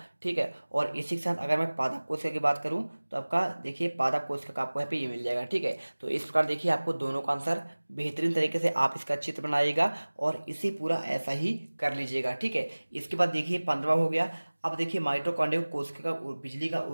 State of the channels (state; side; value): inverted; both; correlation -1.00